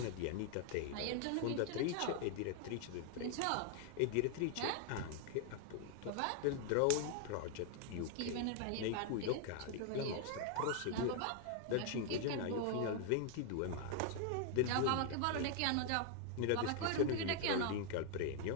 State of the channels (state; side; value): different; both; correlation 0.00